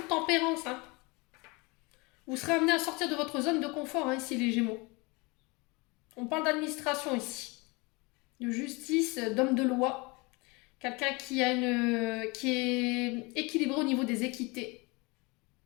tempérance. Hein. Vous serez amené à sortir de votre zone de confort, hein, ici, les Gémeaux. On parle d'administration ici. De justice, d'homme de loi. Quelqu'un qui est équilibré au niveau des équités.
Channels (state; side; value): quieter; right; 26.8 dB